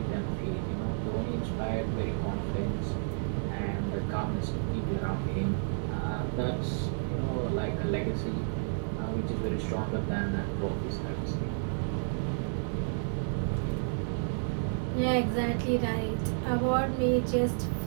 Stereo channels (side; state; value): left; silent; digital silence